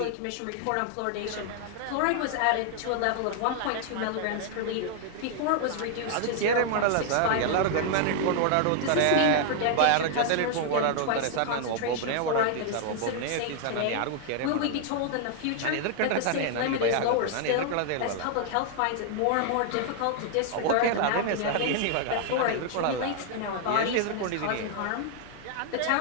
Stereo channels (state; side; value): different; both; correlation 0.00